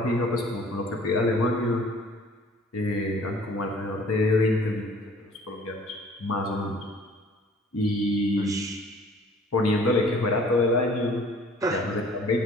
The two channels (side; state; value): both; normal; correlation 0.52